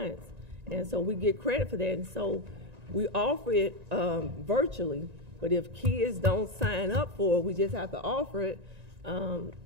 And so we get credit for that. And so we offer it virtually, but if kids don't sign up for it, we just have to offer it,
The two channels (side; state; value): left; late; 1.9 ms